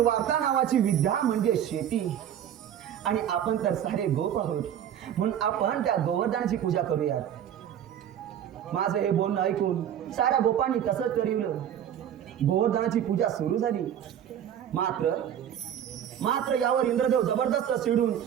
नावाची विद्या म्हणजे शेती, आणि आपण तर सारे गोप आहोत म्हणून आपण त्या गोवर्धनाची पूजा करूयात. माझं हे बोलणं ऐकून साऱ्या गोपांनी तसंच ठरवलं. गोवर्धनाची पूजा सुरू झाली. मात्र यावर इंद्रदेव जबरदस्त चिडून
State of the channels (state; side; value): quieter; left; 9.9 dB